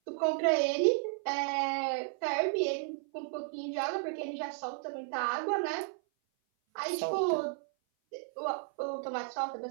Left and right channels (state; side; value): silent; left; 55 dB below the other